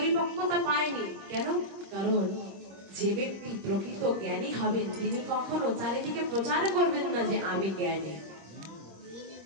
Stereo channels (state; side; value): late; left; 26 ms